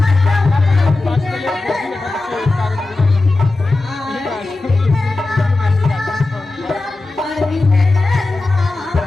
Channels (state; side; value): quieter; right; 3.2 dB